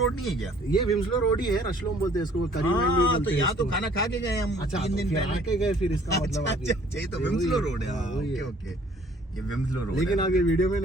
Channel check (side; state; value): both; normal; correlation 0.57